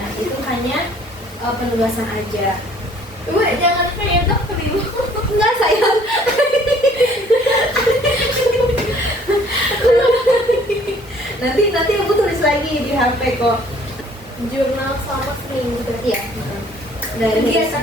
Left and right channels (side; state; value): both; normal; correlation 0.57